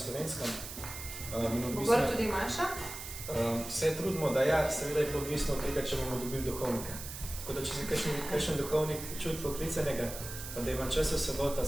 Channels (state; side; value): noise; right; hiss, 9 dB below the sound